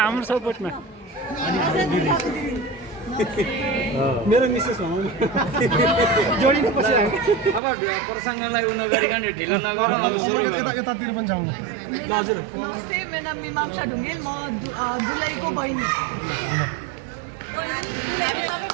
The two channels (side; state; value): left; drops out; at 7.6 s